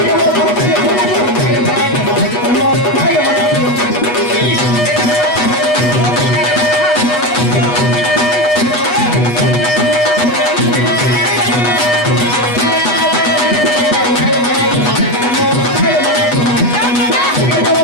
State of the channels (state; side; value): late; right; 8.2 ms